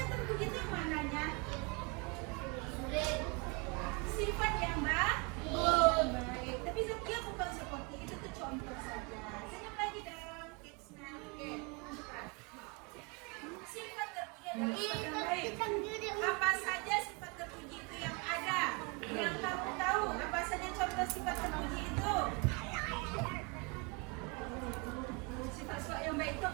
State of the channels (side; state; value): left; quieter; 30.1 dB